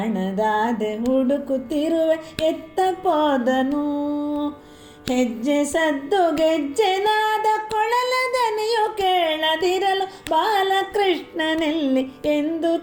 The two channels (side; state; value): both; identical; correlation 1.00